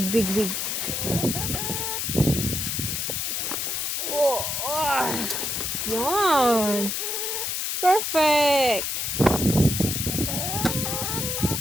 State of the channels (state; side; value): noise; left; hiss, 1 dB below the sound